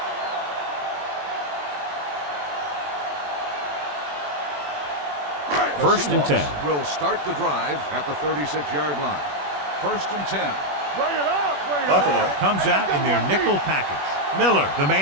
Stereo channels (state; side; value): late; left; 21 ms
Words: First and 10. Will start the drive at the 36-yard line. First and 10. Bring it up, bring it Buffalo up. comes out in their nickel package. Miller, the